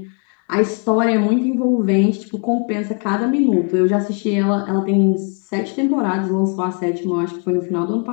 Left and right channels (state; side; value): quieter; right; 38.3 dB